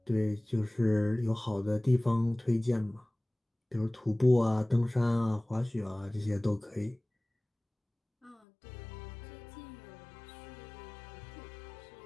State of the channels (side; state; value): right; drops out; at 8.3 s